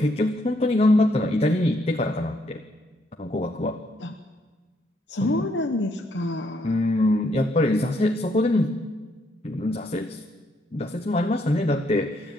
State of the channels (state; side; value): normal; both; correlation 0.73